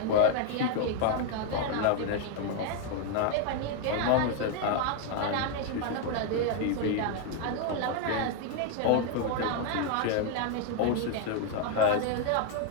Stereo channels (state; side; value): different; both; correlation 0.00